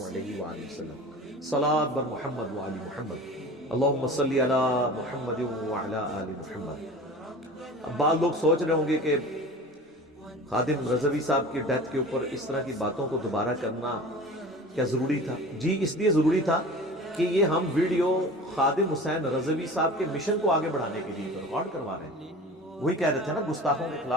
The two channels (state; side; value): normal; both; correlation 0.38